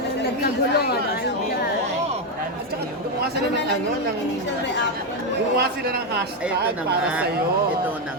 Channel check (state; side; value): normal; both; correlation 0.06